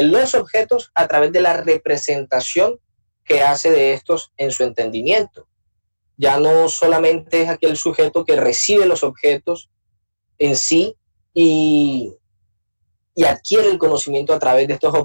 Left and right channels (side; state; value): both; inverted; correlation -1.00